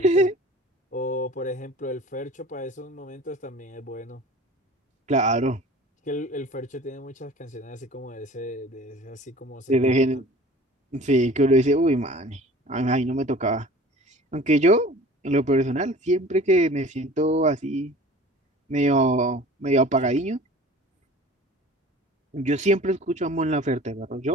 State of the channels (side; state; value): both; normal; correlation 0.44